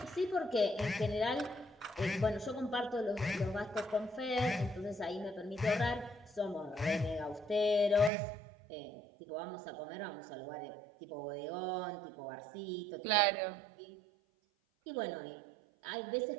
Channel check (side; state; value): left; drops out; at 8.1 s